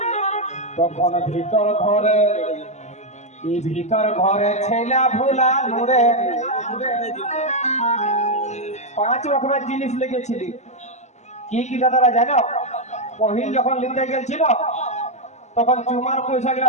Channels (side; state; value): right; late; 0.33 ms